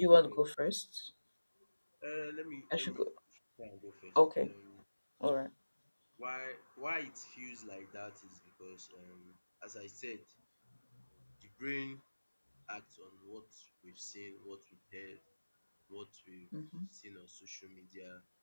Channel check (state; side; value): inverted; both; correlation -1.00